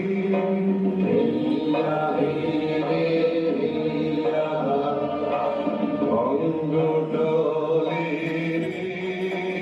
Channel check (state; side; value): identical; both; correlation 1.00